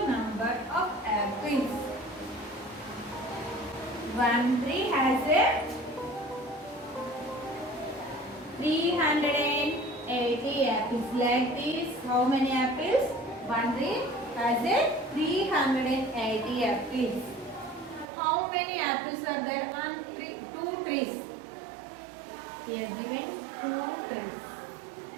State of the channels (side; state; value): left; drops out; at 18.1 s